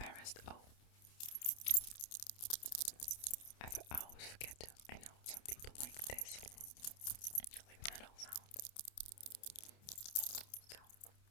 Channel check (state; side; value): late; right; 28 ms